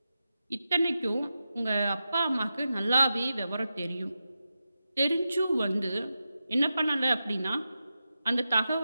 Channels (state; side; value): inverted; both; correlation -0.90